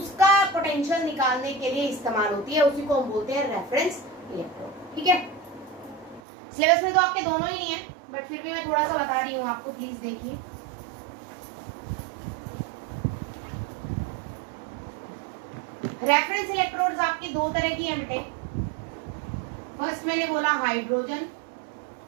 पोटेंशियल निकालने के लिए इस्तेमाल होती है। उसी को हम बोलते हैं रेफरेंस इलेक्ट्रोड। ठीक है, सिलेबस में तो आपके दोनों ही नहीं है, बट फिर भी मैं थोड़ा सा बता रही हूँ आपको, प्लीज देखिए। रेफरेंस इलेक्ट्रोड्स आपकी 2 तरह की है बेटे। फर्स्ट मैंने बोला hydrogen,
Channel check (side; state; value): left; drops out; at 6.2 s